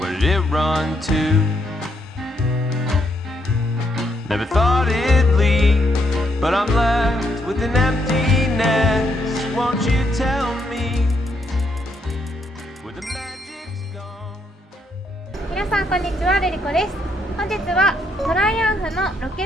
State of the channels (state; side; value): normal; both; correlation 0.75